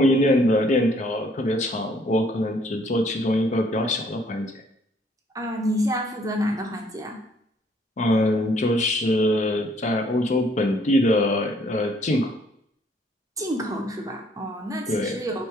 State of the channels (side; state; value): both; normal; correlation 0.64